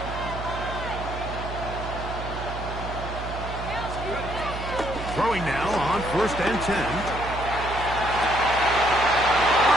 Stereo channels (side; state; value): right; noise; hum, 8 dB below the sound